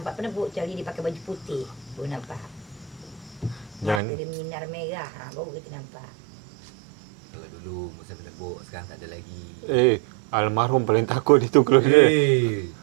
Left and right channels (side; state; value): left; drops out; at 4.0 s